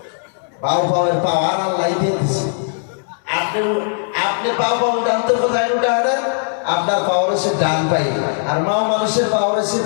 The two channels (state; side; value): silent; right; digital silence